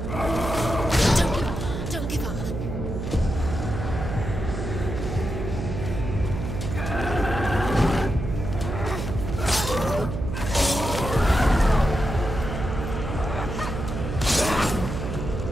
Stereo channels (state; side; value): noise; right; hum, 5 dB below the sound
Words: Don't give up.